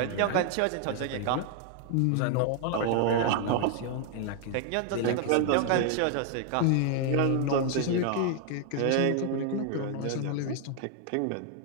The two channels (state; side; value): different; both; correlation 0.00